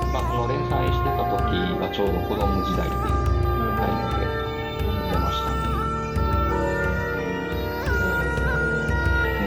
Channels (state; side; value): identical; both; correlation 1.00